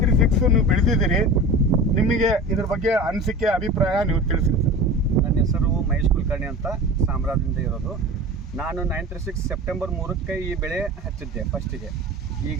ನೀವು ಬೆಳೆದಿದ್ದೀರಿ, ನಿಮಗೆ ಇದ್ರ ಬಗ್ಗೆ ಅನಿಸಿಕೆ ಅಭಿಪ್ರಾಯ ನೀವು ತಿಳಿಸಿ ಸರ್. ನನ್ನ ಹೆಸರು ಮಹೇಶ್ ಕುಲಕರ್ಣಿ ಅಂತ, ಸಾಮ್ರಾದಿಂದ ಇರೋದು. ನಾನು 936 ಸೆಪ್ಟೆಂಬರ್ 3ಕ್ಕೆ ಈ ಬೆಳೆ ಹಚ್ಚಿದ್ದೆ ಫಸ್ಟಿಗೆ.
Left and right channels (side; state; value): both; normal; correlation 0.35